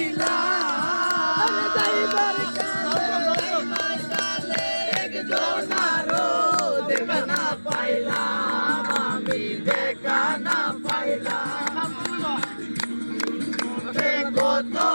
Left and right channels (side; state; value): both; inverted; correlation -1.00